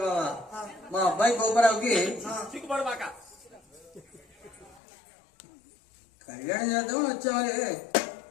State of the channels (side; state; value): right; drops out; at 4.8 s